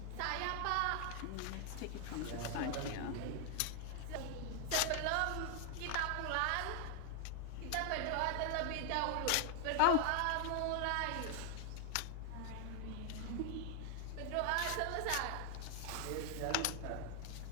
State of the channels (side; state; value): both; different; correlation 0.00